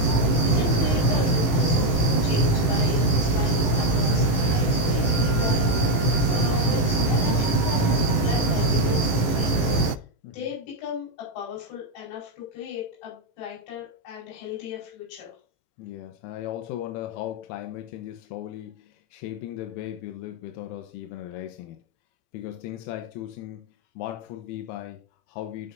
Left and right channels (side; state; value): right; late; 18 ms